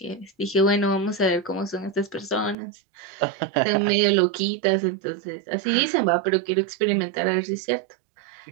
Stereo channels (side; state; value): left; drops out; at 2.6 s